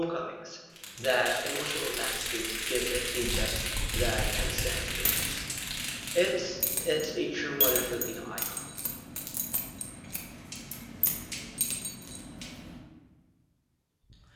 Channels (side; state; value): both; identical; correlation 1.00